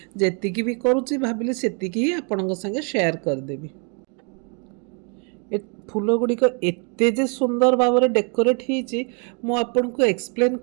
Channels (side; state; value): left; quieter; 37.5 dB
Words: जेतिकी भी करूछि भाबिले सेतिकी ही आपनक संगे शेयर कर देबी। फूल गुड़िक एते जे सुंदर भाव में डेकोरेट होती मु आपन को एक्सप्लेन